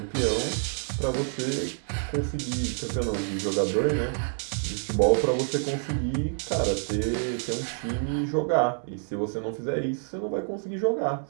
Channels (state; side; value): silent; left; 60 dB below the other